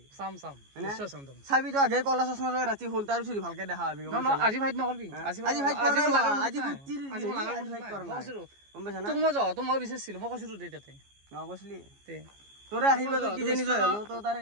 চাম নিশ্চয় চাম চাবি তো আগে কলা চশমা লৈ ৰাতি হ'ল তাৰ পিছত ভালকে দেখা পাবি আজি ফাইট নকৰবি আজি ফাইট কৰা আজি ফুটিৰ ফাইট কৰা গম পাইছা না তোক মই যাওঁ তো মই বিচাৰিছিলো মই কৈছিলো দে তাতে কৈছিলি তে তোৰে আশীৰ্বাদ কিজানি জয় হলো তো তাৰে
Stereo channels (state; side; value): late; left; 14 ms